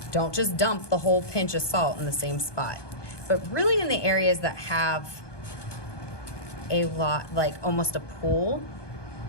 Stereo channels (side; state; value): right; late; 1.2 ms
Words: Don't just dump the whole pinch of salt in the same spot, but really in the areas that have a lot, like almost a pool